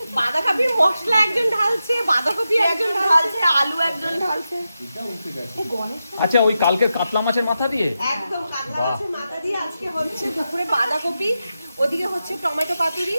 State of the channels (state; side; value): inverted; both; correlation -0.90